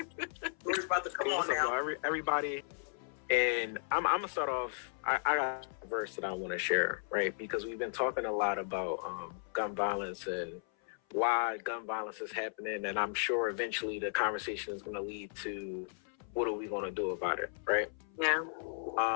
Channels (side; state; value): right; silent; 54 dB below the other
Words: about to come on now. Everybody. And I'm gonna start off. I got a verse that I want to share, right? Because we've been talking a lot about gun violence and why gun violence is happening, and I'm sure eventually the conversation is going to lead to what are we going to do about it, right? Yeah.